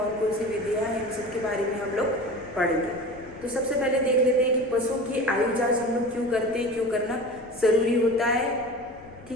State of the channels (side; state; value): left; noise; rumble, 23 dB below the sound